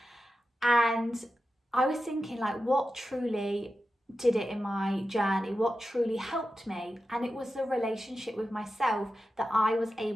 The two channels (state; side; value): normal; both; correlation 0.92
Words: And I was thinking, like, what truly did it in my journey? What truly helped me? And it was the relationship with myself that I was